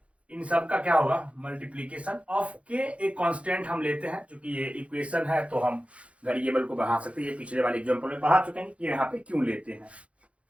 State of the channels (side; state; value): left; late; 0.063 ms